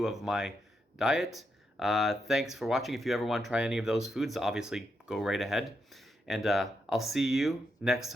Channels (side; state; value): both; normal; correlation 0.82